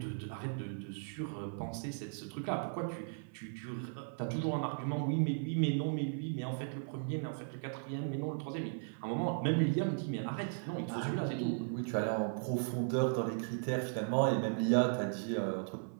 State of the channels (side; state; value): left; silent; 53 dB below the other